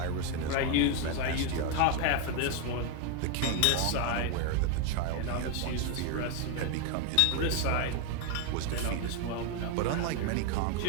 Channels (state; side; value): different; both; correlation 0.01